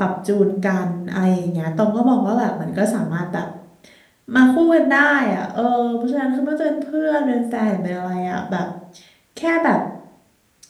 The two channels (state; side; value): identical; both; correlation 1.00